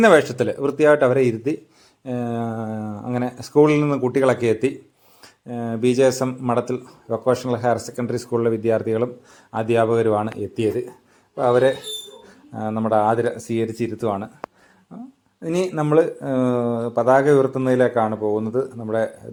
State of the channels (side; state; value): both; identical; correlation 1.00